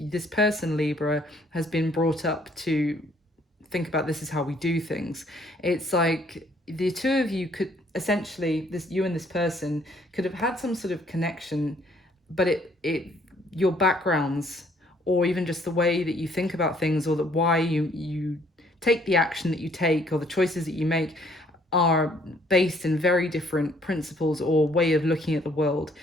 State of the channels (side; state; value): both; normal; correlation 0.63